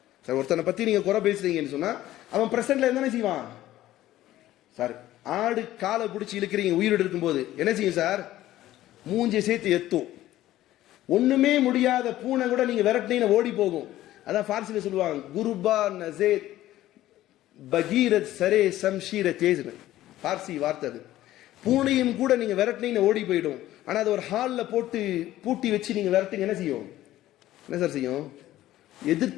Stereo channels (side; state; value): right; quieter; 14.5 dB